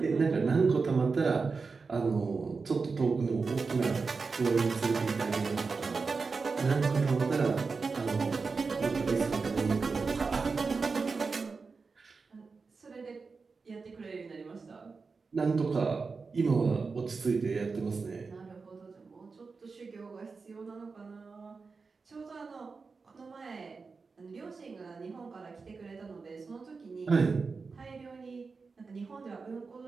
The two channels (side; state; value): left; quieter; 4.6 dB